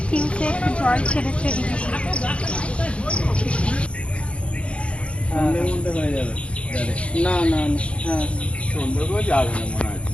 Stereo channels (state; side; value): late; right; 0.060 ms